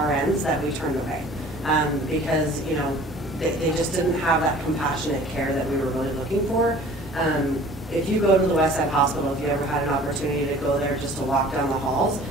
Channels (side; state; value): both; normal; correlation 0.47